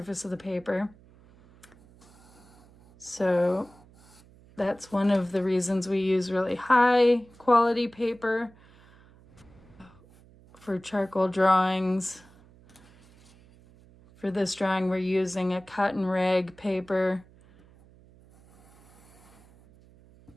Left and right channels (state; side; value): noise; right; hum, 26 dB below the sound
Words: of the paper. So that's one of the reasons we use really high quality paper for charcoal drawings. For this drawing, we're using a cotton rag paper